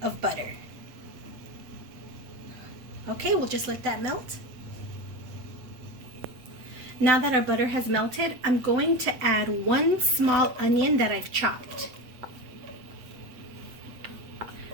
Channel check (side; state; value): left; late; 7.8 ms